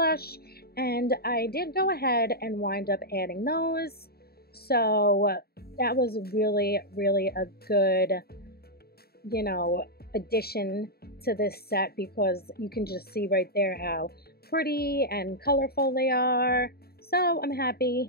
And I did go ahead and wind up adding those. So that was really, really a good, you know, addition to this set because you can just see right there how pretty and colorful they are. So I'm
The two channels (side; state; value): right; late; 0.45 ms